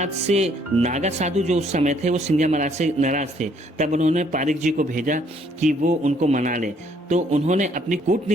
से नागा साधु जो उस समय थे वो सिंधिया महाराज से नाराज थे। तब उन्होंने पारिक जी को भेजा कि वो उनको मना ले। तो उन्होंने अपनी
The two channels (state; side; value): normal; both; correlation 0.65